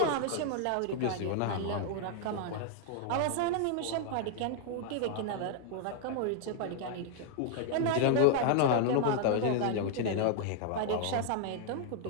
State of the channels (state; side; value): different; both; correlation 0.00